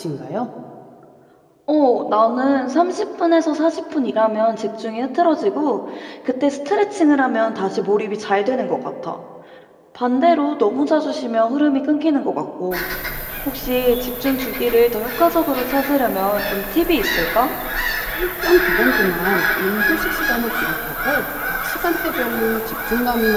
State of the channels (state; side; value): identical; both; correlation 1.00